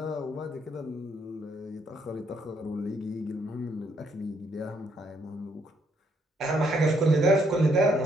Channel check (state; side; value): normal; both; correlation 0.72